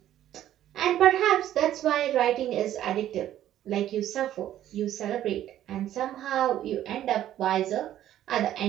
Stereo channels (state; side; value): quieter; left; 12.2 dB